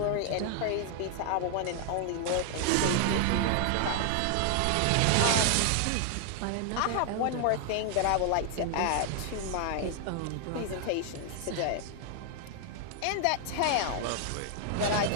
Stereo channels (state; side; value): different; both; correlation 0.00